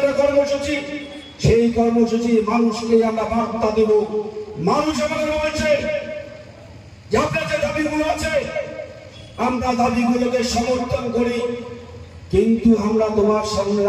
কর্মসূচি, সেই কর্মসূচি মানুষকে আমরা বার্তা দেব। মানুষ আমাদের বলছে যে আপনার যে দাবিগুলো আছে আমরা দাবিগুলোকে সমর্থন করি, কিন্তু আমরা তোমার সামনে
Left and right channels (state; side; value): identical; both; correlation 1.00